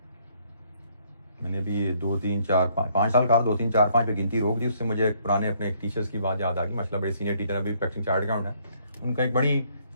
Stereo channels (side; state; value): both; inverted; correlation -0.67